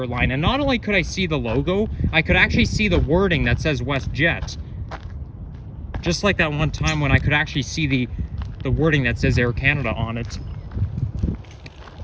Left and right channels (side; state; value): both; identical; correlation 1.00